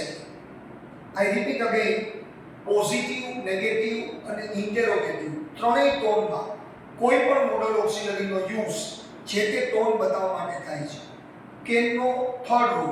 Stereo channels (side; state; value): both; identical; correlation 1.00